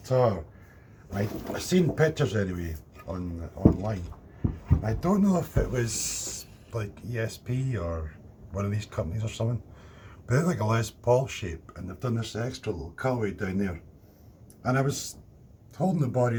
I've seen pictures anyway online. I don't know if it was like ESP or one of these companies or something. But they're like a Les Paul shape, and they've done this extra little cutaway down there. And I was holding the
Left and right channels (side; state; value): both; identical; correlation 1.00